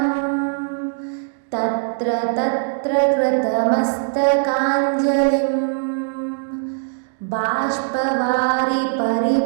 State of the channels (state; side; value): silent; left; digital silence